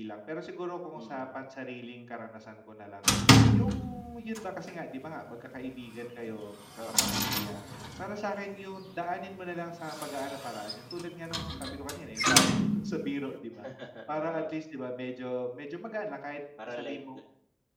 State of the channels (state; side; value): identical; both; correlation 1.00